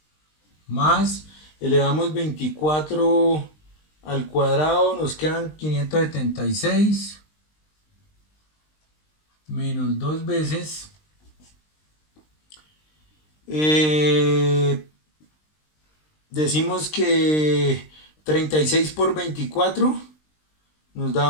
más elevamos 24 al cuadrado, nos quedan 576, menos 2 veces, decimos que 36 por 24 nos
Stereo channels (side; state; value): right; late; 20 ms